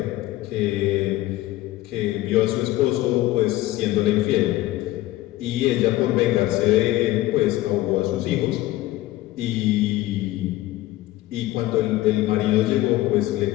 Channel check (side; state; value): right; quieter; 16.6 dB